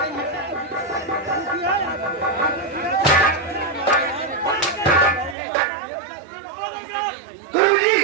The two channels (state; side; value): drops out; left; at 5.4 s